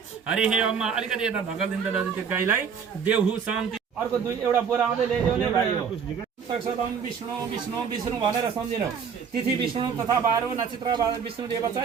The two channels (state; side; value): quieter; left; 6.6 dB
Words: हे अम्मा अलिकति यता धकलिदिनु दाजु त्यो गाईलाई देवहु शान्ति अर्को दुई एउटा बोरा आउँदै ल्याइदेऊ नि भाइ हो तक्षदम विष्णु विष्णु विष्णु भनेर सम्झिनु तिथि विष्णु तथा बारो नक्षत्र विष्णु देव छ